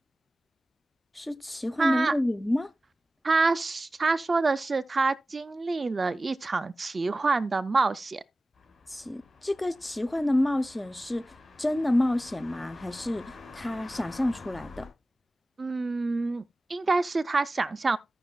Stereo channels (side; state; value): both; normal; correlation 0.96